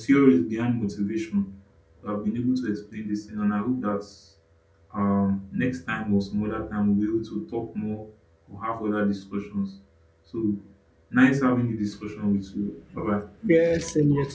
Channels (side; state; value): both; identical; correlation 1.00